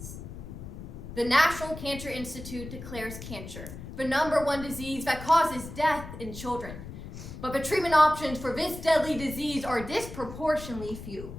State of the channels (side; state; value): left; noise; rumble, 11 dB below the sound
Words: The National Cancer Institute declares cancer the #1 disease that causes death in children. But the treatment options for this deadly disease are disproportionately few.